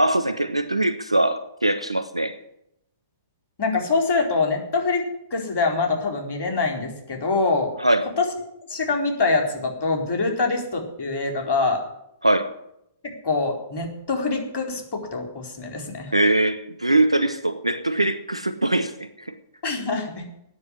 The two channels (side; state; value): both; inverted; correlation -0.64